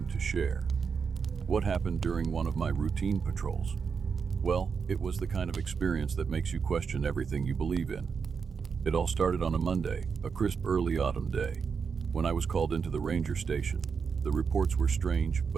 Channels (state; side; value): quieter; left; 5.9 dB